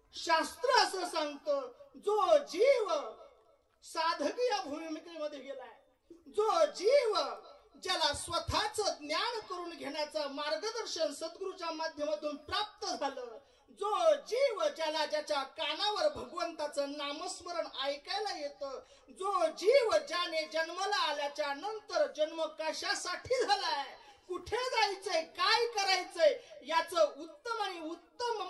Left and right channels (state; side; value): identical; both; correlation 1.00